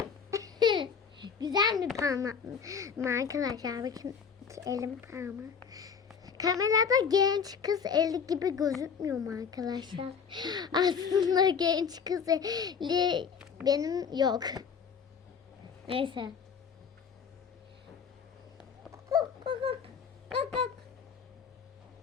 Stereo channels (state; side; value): quieter; right; 6.5 dB